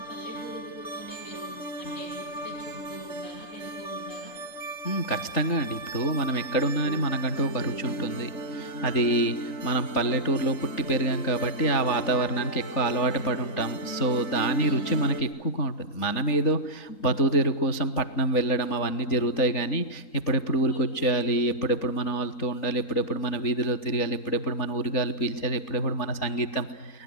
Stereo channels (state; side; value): late; right; 3.8 ms